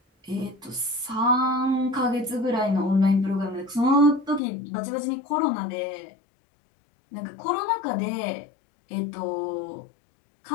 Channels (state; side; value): drops out; right; at 4.4 s